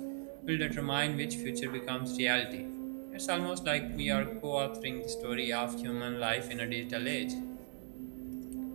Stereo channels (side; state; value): left; silent; 52 dB below the other